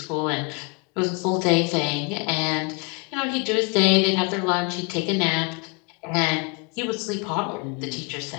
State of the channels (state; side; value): quieter; right; 31.5 dB